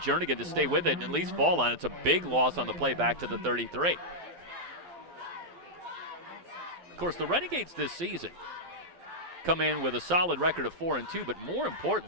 to stay with it and at least fall on it. It's a big loss on the play back to the 33. Of course, the Renegades this season come in with a solid record of 4-2, but more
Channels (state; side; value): late; left; 12 ms